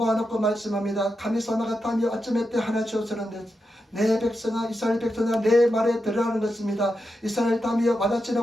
말씀합니다. 가미사마가 타며 아침에 때 하나 주었으는데 내 백성아 이스라엘 백성아 내 말에 들으라는 것입니다. 이스라엘 타며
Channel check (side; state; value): both; normal; correlation 0.88